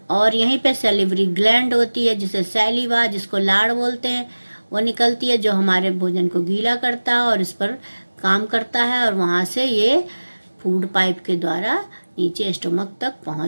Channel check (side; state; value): both; inverted; correlation -1.00